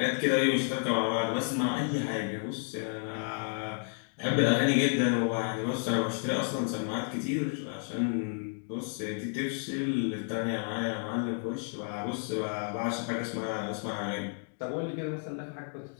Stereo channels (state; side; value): silent; right; 57 dB below the other